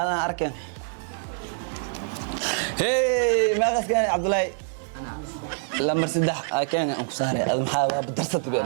اركن هي ما كان عبد الله انا لمبر 6 كان انكو ساري هذا محا بدرست بيه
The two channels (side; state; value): left; silent; digital silence